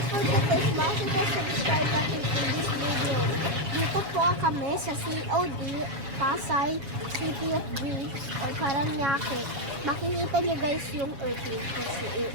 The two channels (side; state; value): left; late; 7.1 ms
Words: smash the subscribe button in this video. Dito po kami sa COD, Pasay, City of Dreams, or Paranaque. Makikita niyo guys yung airplane kung